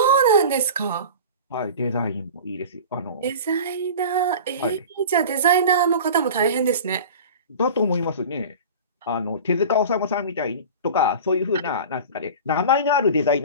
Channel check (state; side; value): inverted; both; correlation -0.35